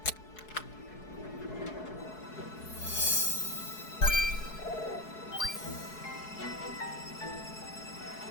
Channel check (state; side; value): late; right; 4.7 ms